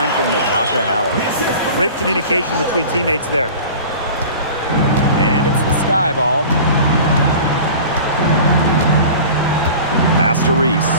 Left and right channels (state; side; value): inverted; both; correlation -0.40